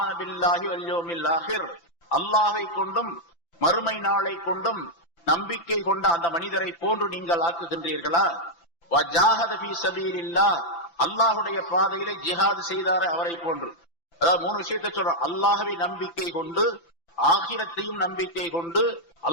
பில்லாஹி வல் யௌமில் ஆகிர். அல்லாஹ்வை கொண்டும் மறுமை நாளை கொண்டும் நம்பிக்கை கொண்ட அந்த மனிதரை போன்று நீங்கள் ஆக்குகின்றீர்களா? வஜாஹத ஃபீ ஸபீலில்லாஹ். அல்லாஹ்வுடைய பாதையிலே ஜிஹாத் செய்தாரே அவரை போன்று. அதாவது 3 விஷயத்தை சொல்றோம். அல்லாஹ்வை நம்பிக்கை கொண்டு, ஆகிரத்தையும் நம்பிக்கை கொண்டு,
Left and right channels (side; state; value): right; late; 5.9 ms